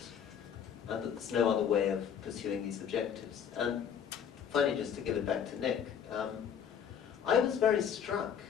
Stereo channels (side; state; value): right; quieter; 8.1 dB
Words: and that there's no other way of pursuing these objectives. And finally, just to give it back to Nick, I was very struck